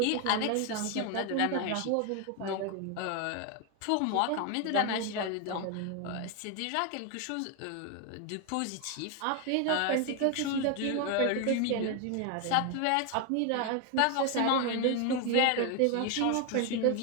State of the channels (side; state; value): both; different; correlation 0.01